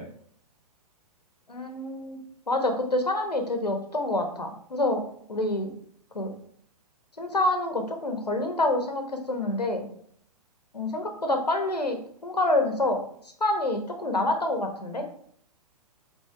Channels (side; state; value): both; normal; correlation 0.35